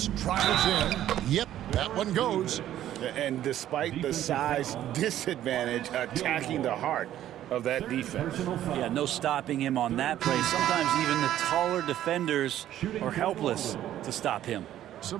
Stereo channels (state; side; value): quieter; left; 12.2 dB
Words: tries in. Yep, that one goes. And despite the size disadvantage, attacking the heart of that defense. Yeah, no stopping him on that play. Sometimes even the taller defenders are helpless to stop him. So